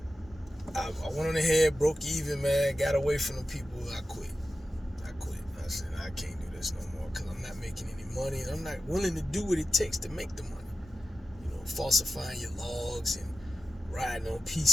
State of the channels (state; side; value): normal; both; correlation 0.92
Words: I went on ahead, broke even, man, got away from the people. I quit. I said, I can't do this no more because I'm not making any money, and I'm not willing to do what it takes to make the money. Falsifying your logs and riding on